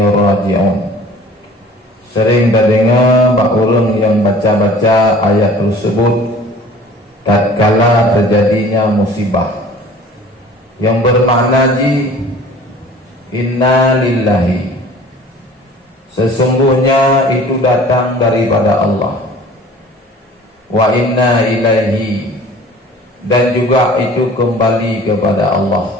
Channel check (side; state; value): both; normal; correlation 0.47